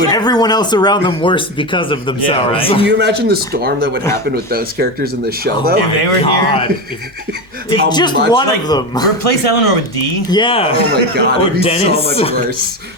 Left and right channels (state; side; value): normal; both; correlation 0.18